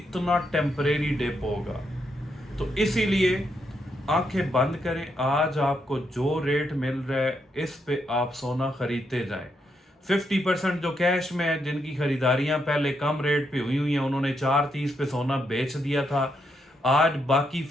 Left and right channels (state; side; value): normal; both; correlation 0.80